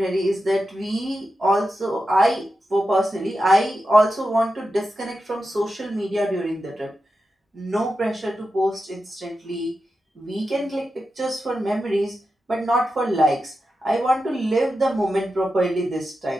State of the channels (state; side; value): normal; both; correlation 0.90